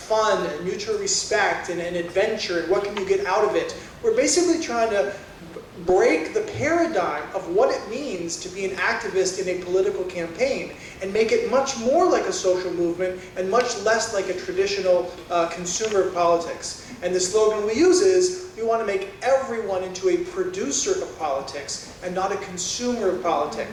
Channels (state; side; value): identical; both; correlation 1.00